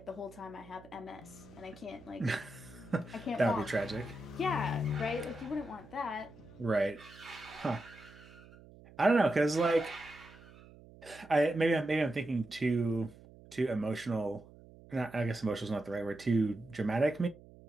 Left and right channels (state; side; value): noise; right; hum, 21 dB below the sound